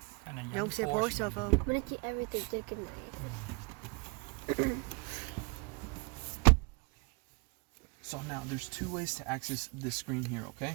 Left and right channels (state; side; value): quieter; left; 30.7 dB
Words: Giống xe Porsche phải không? Mình chỉ everything trên cái này. So now there's two ways to access this screen here, okay?